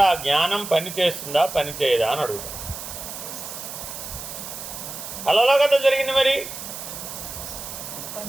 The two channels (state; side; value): noise; right; hiss, 9 dB below the sound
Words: ఆ జ్ఞానం పని చేస్తుందా పని చేయదా అని అడుగుతాం. కళలో కదా జరిగింది. మరి